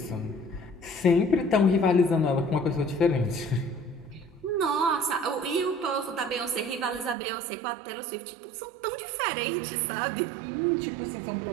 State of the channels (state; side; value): drops out; left; at 7.2 s